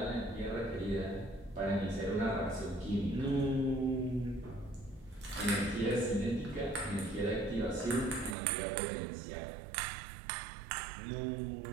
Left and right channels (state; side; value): drops out; left; at 8.3 s